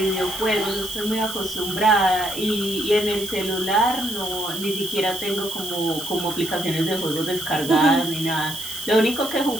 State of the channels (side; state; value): right; noise; hiss, 10 dB below the sound